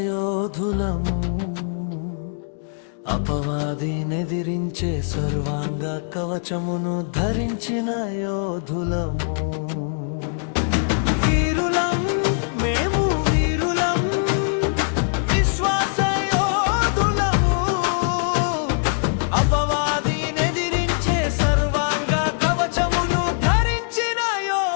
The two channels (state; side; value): silent; right; digital silence